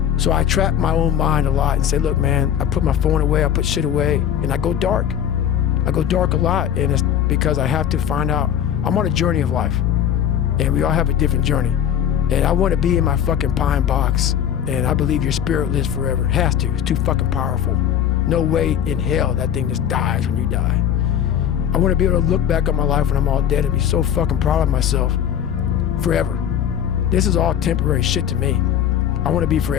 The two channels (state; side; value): quieter; right; 9.6 dB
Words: So I trap my own mind a lot and say, look, man, I put my phone away, I put shit away, and I go dark. I go dark a lot, and it's because I have to find out. I'm on a journey of life, and we all have a different journey. And I want to be in my fucking pine box, and I believe your spirit lives forever. It has to. It's too fucking powerful. No way in hell that thing just dies when you die. I want to be able to look back on my life when I'm all dead and be so fucking proud of myself forever. This is all temporary shit to me. I want to be